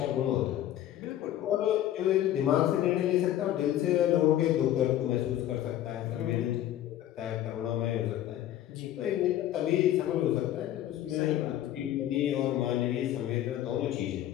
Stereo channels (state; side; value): quieter; right; 12.4 dB